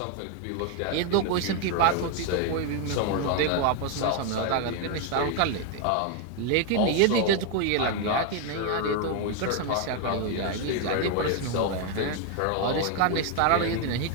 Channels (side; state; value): both; different; correlation 0.01